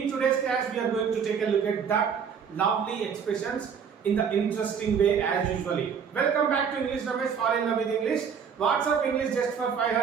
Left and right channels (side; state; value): left; quieter; 6.9 dB